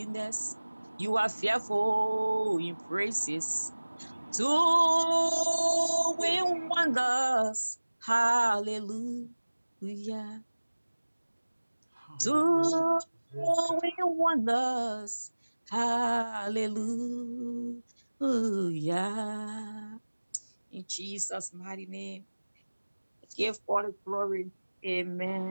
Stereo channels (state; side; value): inverted; both; correlation -1.00